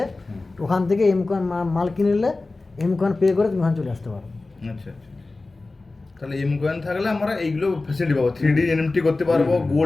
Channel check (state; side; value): quieter; right; 3.4 dB